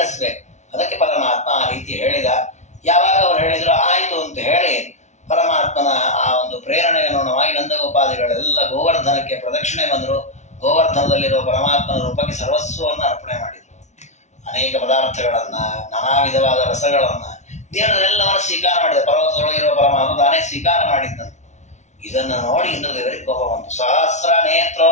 ಅದಕ್ಕೆ ಪರಮಾತ್ಮ ಆ ರೀತಿ ಹೇಳಿದ. ಯಾವಾಗ ಅವ್ರು ಹೇಳಿದ್ರು ಆಯ್ತು ಅಂತ ಹೇಳಿ ಪರಮಾತ್ಮನ ಆ ಒಂದು ಪ್ರೇರಣೆಗೆ ಅನುಗುಣವಾಗಿ ನಂದಗೋಪಾದಿಗಳೆಲ್ಲ ಗೋವರ್ಧನಕ್ಕೆ ಪ್ರದಕ್ಷಿಣೆ ಬಂದರು. ಗೋವರ್ಧನದಲ್ಲಿರುವ ಪರಮಾತ್ಮನ ರೂಪಕ್ಕೆ ಸರ್ವಸ್ವವನ್ನು ಅರ್ಪಣೆ ಮಾಡಿದರು. ಅನೇಕ ಪದಾರ್ಥಗಳನ್ನ, ನಾನಾ ವಿಧವಾದ ರಸಗಳನ್ನ ದೇವರೆಲ್ಲವನ್ನು ಸ್ವೀಕಾರ ಮಾಡಿದ. ಪರ್ವತದೊಳಗಿರುವ ಪರಮಾತ್ಮ ತಾನೇ ಸ್ವೀಕಾರ ಮಾಡಿದ್ದಂತೆ. ಇದನ್ನು ನೋಡಿ ಇಂದ್ರದೇವರಿಗೆ ಕೋಪ ಬಂತು. ಸಹಸ್ರ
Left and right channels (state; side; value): late; right; 0.33 ms